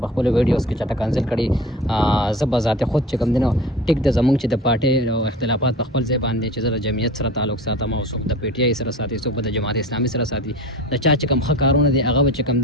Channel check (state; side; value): normal; both; correlation 0.37